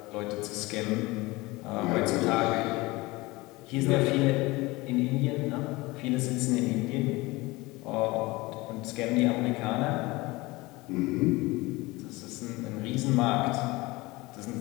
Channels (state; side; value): quieter; right; 21.9 dB